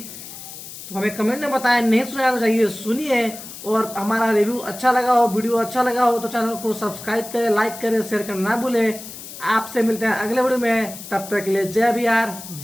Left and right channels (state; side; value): noise; left; hiss, 13 dB below the sound